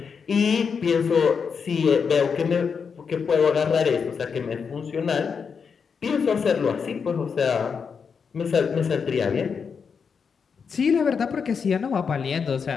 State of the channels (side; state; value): right; quieter; 6.1 dB